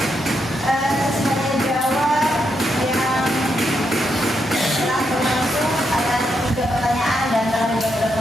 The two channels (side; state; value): both; normal; correlation 0.81